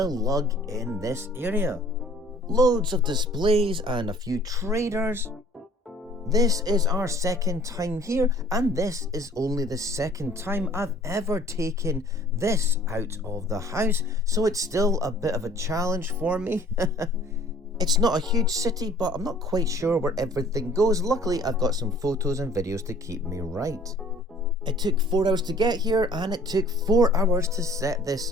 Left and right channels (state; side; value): normal; both; correlation 0.53